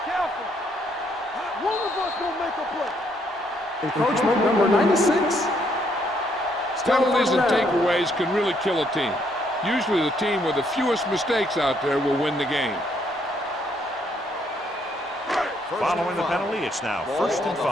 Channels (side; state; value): both; normal; correlation 0.71